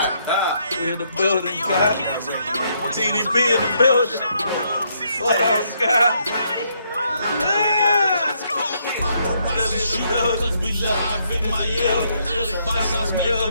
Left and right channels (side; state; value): both; inverted; correlation -0.73